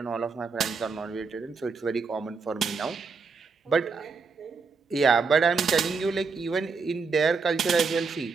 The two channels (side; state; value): left; quieter; 4.8 dB